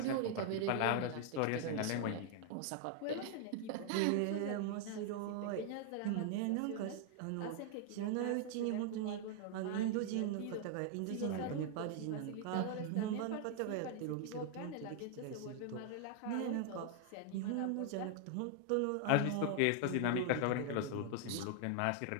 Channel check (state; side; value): different; both; correlation 0.00